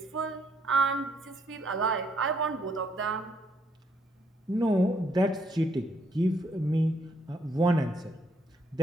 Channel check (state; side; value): normal; both; correlation 0.71